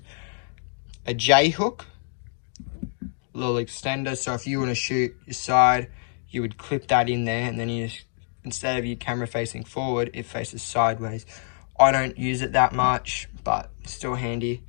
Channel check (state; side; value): silent; right; digital silence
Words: A J-hook. Little extender, so if you want to shoot your side, you would clip that in there, and then you just, instead of your camera facing forward, it faces sideways. I don't use it that much, but still handy.